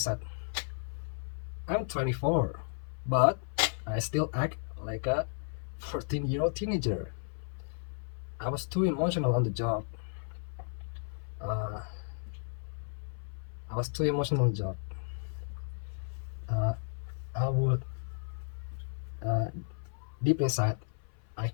I'm 24, but I still act like a 14-year-old teenager. I was too emotional on the job. Uh, I was too emotional on the job. Uh, I would uh, deep inside, I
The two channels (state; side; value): silent; right; 55 dB below the other